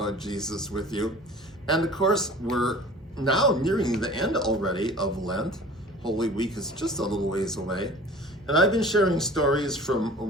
Jesus with you. And of course, we're now nearing the end already of Lent. Holy Week is just a little ways away. And I've been sharing stories from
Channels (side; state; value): both; normal; correlation 0.44